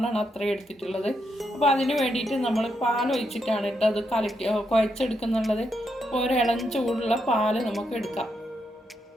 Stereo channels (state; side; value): normal; both; correlation 0.81